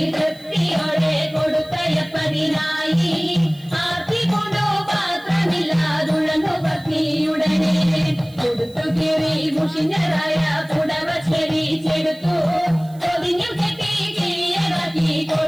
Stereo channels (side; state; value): right; noise; hiss, 26 dB below the sound